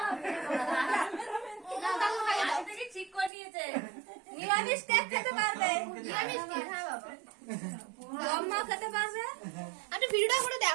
না দাদু খাইয়ে দাও থেকে ঠিক করে দিয়েছে নিরামিষ কে খেতে পারবে নিরামিষ কে হ্যাঁ বাবা আম্মা খেতে পারবে আরে ভিডিওটা করে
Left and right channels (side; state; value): left; drops out; at 3.3 s